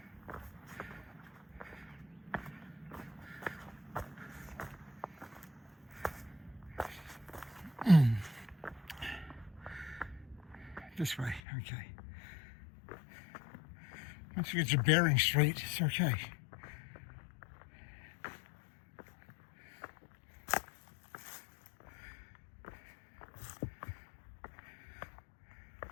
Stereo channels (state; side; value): drops out; right; at 11.4 s